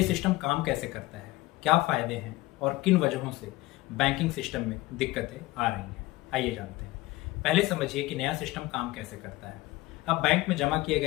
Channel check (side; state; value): right; quieter; 19.2 dB